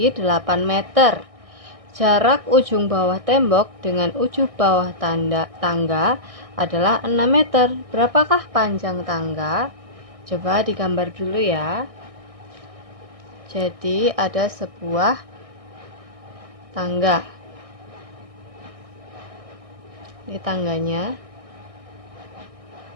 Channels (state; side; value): late; left; 1.6 ms